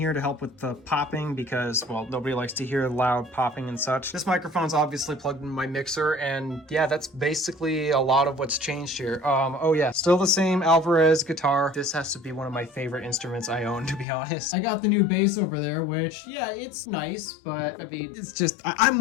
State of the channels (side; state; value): right; drops out; at 14.1 s